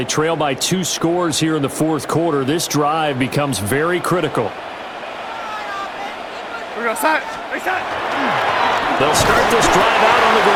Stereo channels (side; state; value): both; identical; correlation 1.00